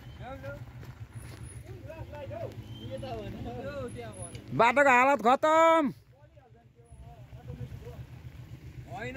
बाटोको हालत खतम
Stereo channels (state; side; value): identical; both; correlation 1.00